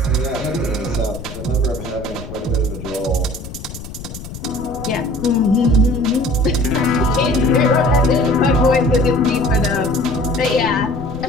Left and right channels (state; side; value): noise; left; rumble, 12 dB below the sound